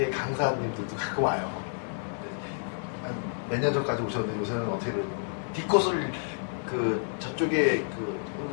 강사님들도 가끔 와요. 몇 년 전까지 오셨는데 요새는 어떻게 디코스를 그 저쪽에 그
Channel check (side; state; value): right; silent; digital silence